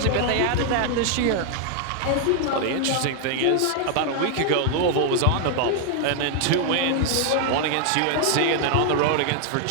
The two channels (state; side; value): different; both; correlation 0.00